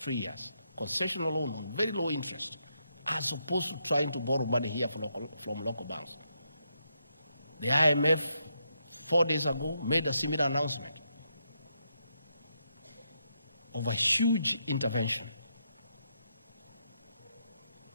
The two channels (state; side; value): inverted; both; correlation -0.80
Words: years. Concessional loan on very low interest, as opposed to trying to borrow money here from local banks. The IMF, 4 days ago, made a similar announcement of a huge intervention.